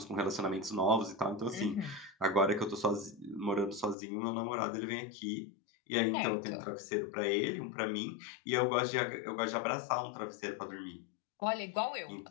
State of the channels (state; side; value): drops out; right; at 4.0 s